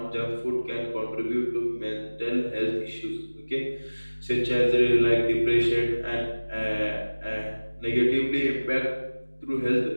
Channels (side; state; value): both; inverted; correlation -1.00